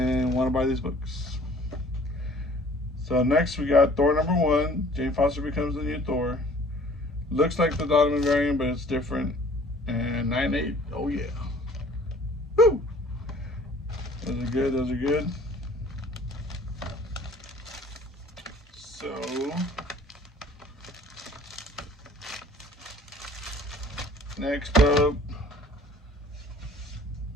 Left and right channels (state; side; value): normal; both; correlation 0.52